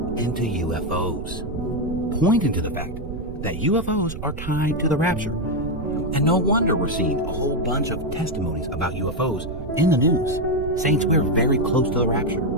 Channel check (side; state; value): right; noise; rumble, 9 dB below the sound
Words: into UFOs, pointing to the fact that UFOs are tied to the rapture. And no wonder we're seeing a whole bunch of testimonies about UFOs in the news, saying we're very close to the rapture.